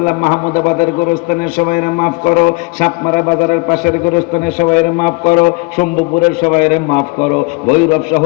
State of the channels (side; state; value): right; quieter; 27.6 dB